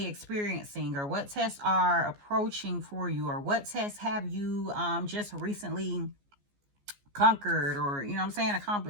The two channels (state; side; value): late; left; 14 ms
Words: experiencing, or what tests are approaching for you, or what tests have you just recently conquered, or